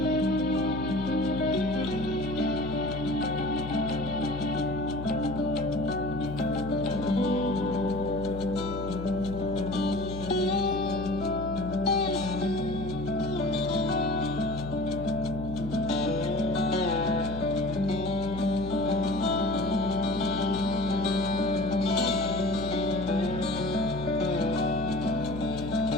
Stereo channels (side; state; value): left; noise; hum, 9 dB below the sound